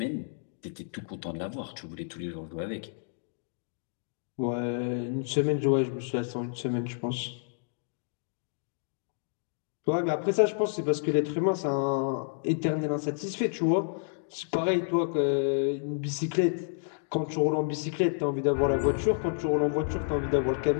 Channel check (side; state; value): right; silent; digital silence